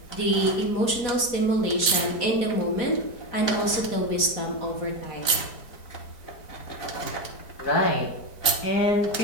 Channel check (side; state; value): right; late; 4.6 ms